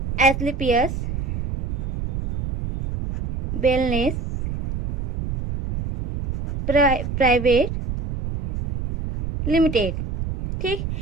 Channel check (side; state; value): right; noise; rumble, 4 dB below the sound